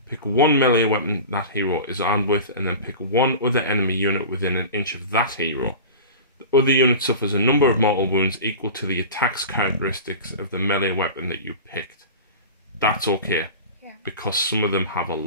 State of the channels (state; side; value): inverted; both; correlation -0.33